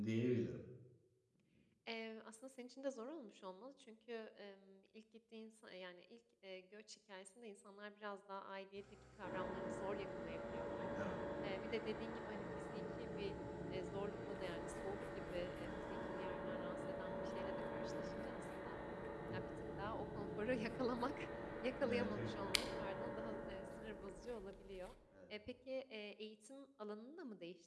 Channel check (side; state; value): both; identical; correlation 1.00